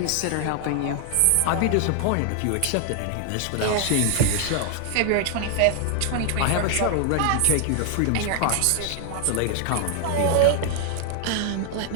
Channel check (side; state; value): both; different; correlation 0.00